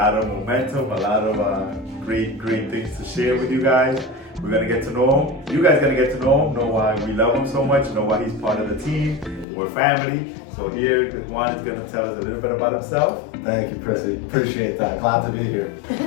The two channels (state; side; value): drops out; right; at 9.5 s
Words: of momentum, a lot of great things to share with you guys. We're gonna get to know him. You guys gonna get to know why we love him so much, know why he's part of the team. We're family. So here, Juan is gonna tell us a little bit about himself. Thank you, Prissy. Appreciate that. Glad to be here.